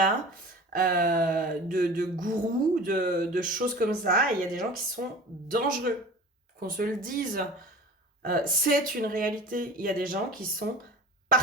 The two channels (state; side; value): normal; both; correlation 0.39